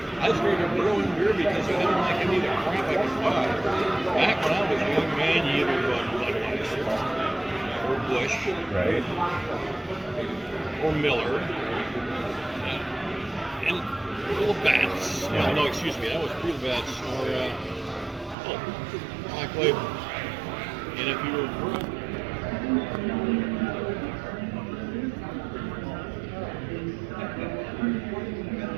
I started growing beer because I didn't like any of the crap I could buy. Back when I was a young man, you either bought Budweiser or Busch, right, or Miller, and little bats. Yeah. No, excuse me, that was real bats or Black Label. And if you were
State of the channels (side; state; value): left; drops out; at 18.4 s